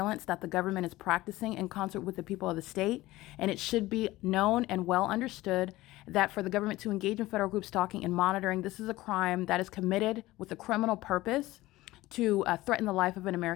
that the government is practicing in concert with the people of the state, and it should be known and well understood that for the government to engage in federal group stalking and monitoring, this is a crime that is committed with a criminal purpose to threaten the life of an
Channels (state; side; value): quieter; right; 17.9 dB